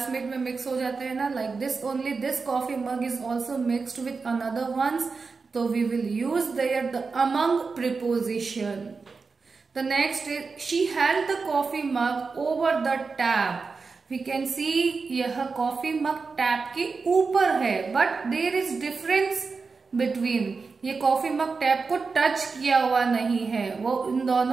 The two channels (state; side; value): quieter; left; 4.6 dB